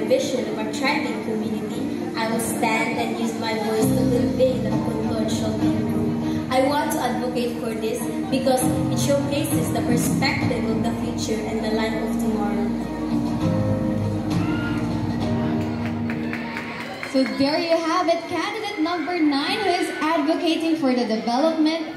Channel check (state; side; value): identical; both; correlation 1.00